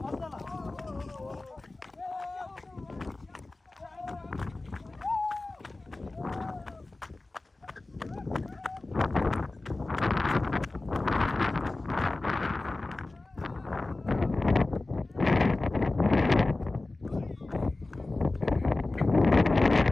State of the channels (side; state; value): right; quieter; 3.1 dB